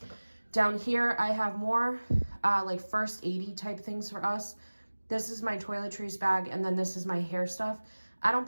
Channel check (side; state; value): both; inverted; correlation -1.00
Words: Down here, I have more like first aid-y type things for us. This is my toiletries bag, and then this is my hair stuff. I don't